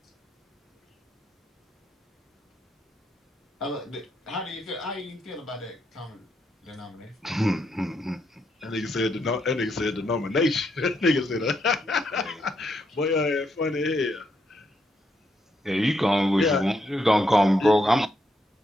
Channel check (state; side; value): normal; both; correlation 0.78